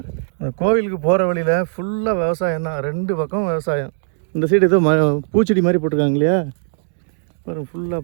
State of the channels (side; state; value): left; silent; digital silence